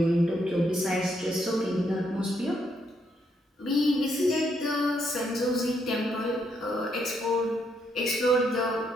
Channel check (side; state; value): both; normal; correlation 0.75